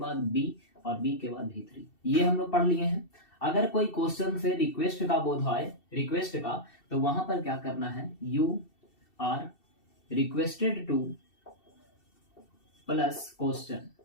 बी और बी के बाद V3, ये हम लोग पढ़ लिए हैं। अगर कोई क्वेश्चन से रिक्वेस्ट का बोध आए, रिक्वेस्ट का, तो वहां पर क्या करना है, you are requested to plus question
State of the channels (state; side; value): late; right; 2.7 ms